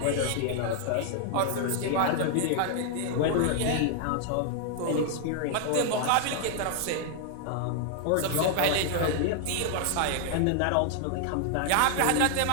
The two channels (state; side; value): different; both; correlation 0.00